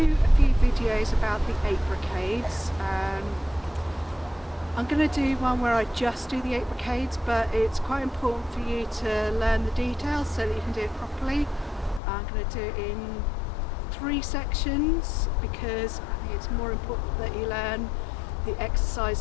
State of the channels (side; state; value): right; drops out; at 12.0 s